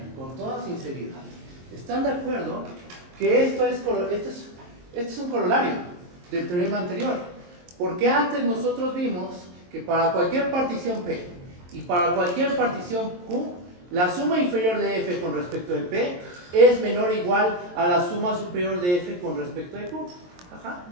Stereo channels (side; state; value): left; late; 23 ms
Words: con toda sinceridad, ¿están de acuerdo que esto es un corolario del teorema anterior? Porque antes nosotros vimos que para cualquier partición P y para cualquier partición Q, la suma inferior de F con respecto de P es menor o igual a la suma superior de F con respecto de Q. Ajá.